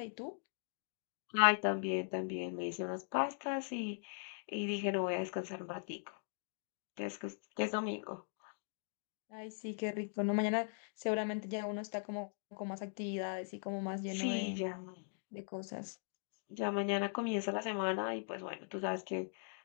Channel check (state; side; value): silent; right; digital silence